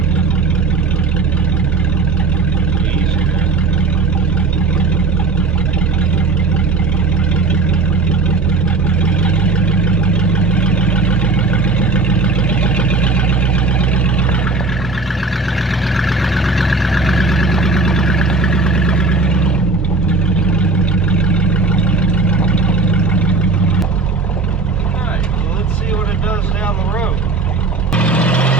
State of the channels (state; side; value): quieter; left; 4.0 dB